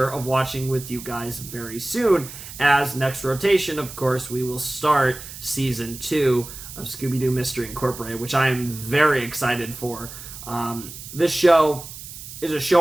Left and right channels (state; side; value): noise; right; hiss, 13 dB below the sound